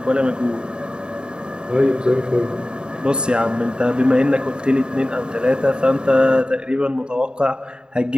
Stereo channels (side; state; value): left; late; 0.049 ms